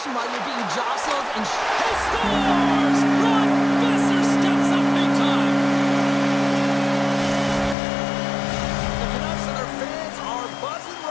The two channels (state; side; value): drops out; right; at 7.8 s